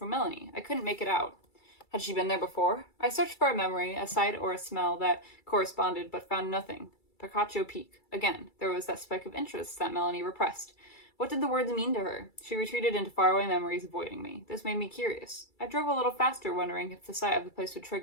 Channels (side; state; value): right; late; 2.3 ms